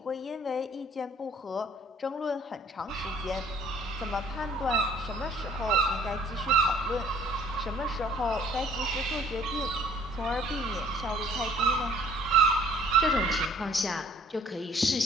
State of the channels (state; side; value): normal; both; correlation 0.57